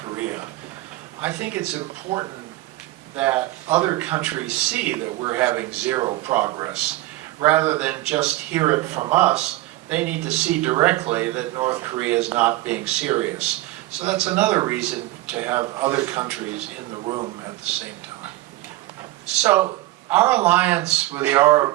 I think it's important that other countries see that we're having zero progress. Rather than just hear it from us, they need to see directly that North Korea is not being serious. So that's another reason to have other countries in the room at the same time. So our alliance with the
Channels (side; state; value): left; quieter; 17.6 dB